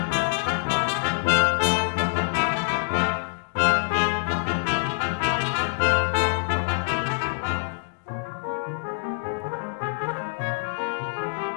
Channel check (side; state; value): right; silent; digital silence